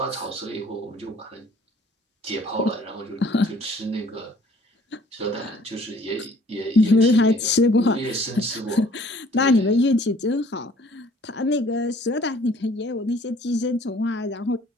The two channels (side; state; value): both; normal; correlation 0.56